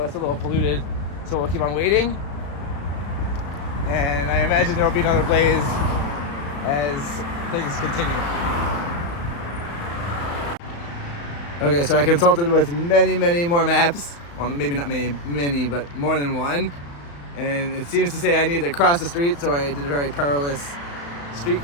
it's a little polluted, so we'll keep on waiting. And I imagine there will be another blaze as things continue. Okay, so I consulted with many more maps. Well, maybe not many, but more than one. And it seems to say I need to cross the street, so I did a very perilous street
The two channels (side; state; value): right; late; 35 ms